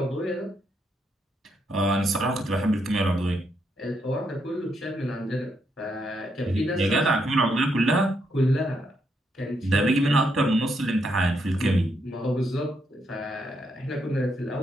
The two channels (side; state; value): both; normal; correlation 0.78